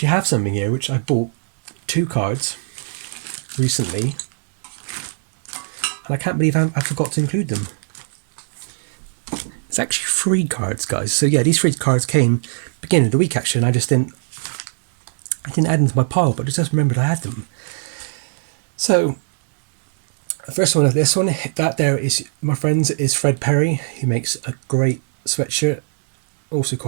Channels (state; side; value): silent; left; digital silence